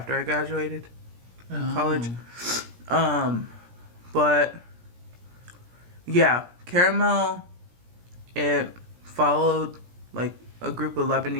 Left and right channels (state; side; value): late; left; 17 ms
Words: I graduated college. But yeah, Caramel, it followed like a group of